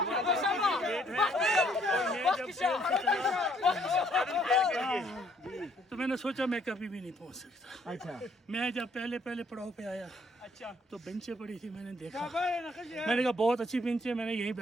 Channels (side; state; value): both; normal; correlation 0.65